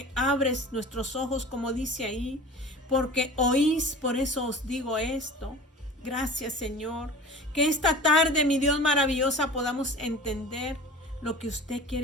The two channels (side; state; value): both; normal; correlation 0.39